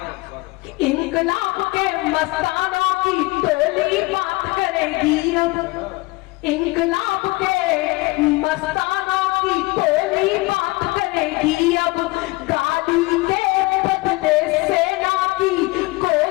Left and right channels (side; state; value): right; quieter; 22.8 dB